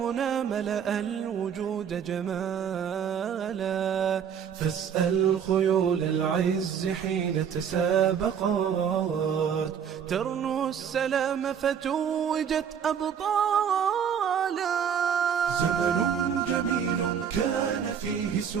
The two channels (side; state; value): left; quieter; 7.9 dB